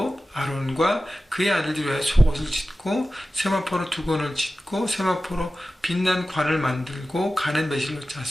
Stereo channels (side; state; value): both; normal; correlation 0.95